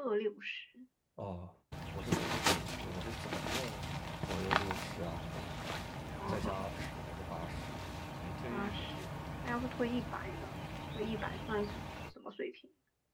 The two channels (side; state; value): both; identical; correlation 1.00